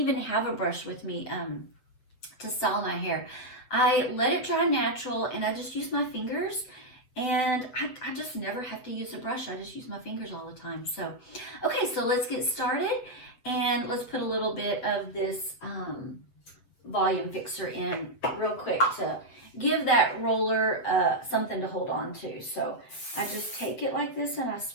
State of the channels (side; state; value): right; late; 8.0 ms